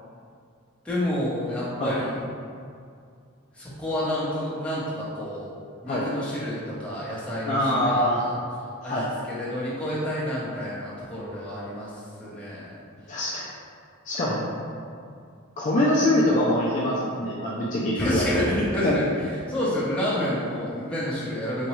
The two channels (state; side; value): normal; both; correlation 0.34